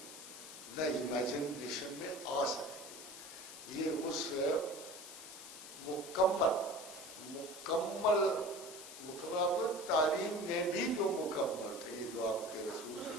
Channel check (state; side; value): noise; left; hiss, 12 dB below the sound